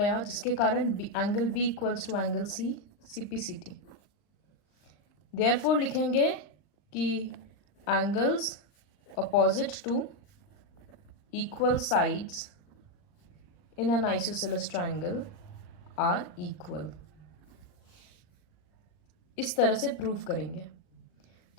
जिसके कारण angle B equals to angle C, CPCT. Therefore लिखेंगे कि angles opposite to equal sides in an isosceles triangle are equal. इस तरह से प्रूव करेंगे।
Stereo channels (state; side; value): late; right; 39 ms